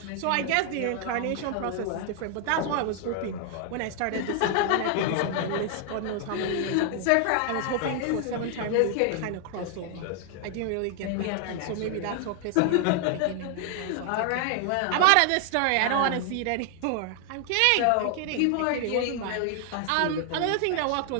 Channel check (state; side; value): different; both; correlation 0.00